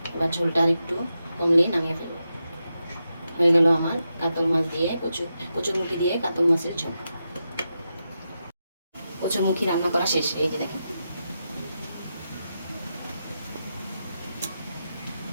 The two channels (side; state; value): both; inverted; correlation -0.88